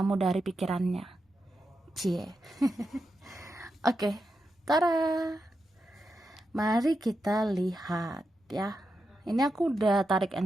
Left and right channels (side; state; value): both; normal; correlation 0.87